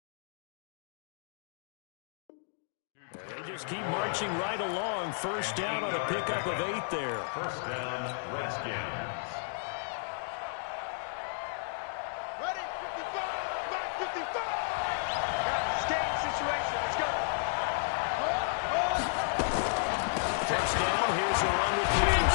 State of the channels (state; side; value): silent; right; digital silence